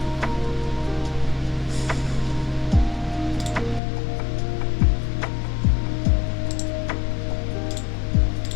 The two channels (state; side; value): drops out; right; at 3.8 s